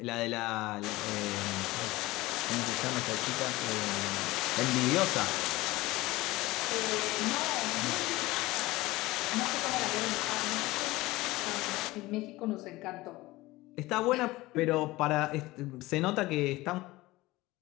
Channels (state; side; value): quieter; right; 19.4 dB